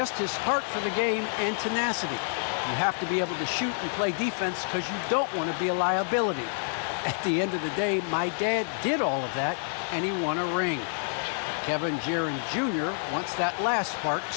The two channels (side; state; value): right; silent; 59 dB below the other